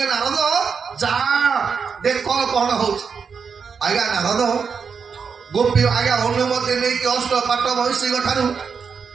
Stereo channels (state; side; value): quieter; left; 6.0 dB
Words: ନାରଦ ଯା ଦେଖ କଣ ହଉଛି। ଆଜ୍ଞା ନାରଦ ଗୋପୀ ଆଜ୍ଞା ଅନୁମତି ନେଇକି ଅଷ୍ଟପାଟ ମହିଷୀଙ୍କ ଠାରୁ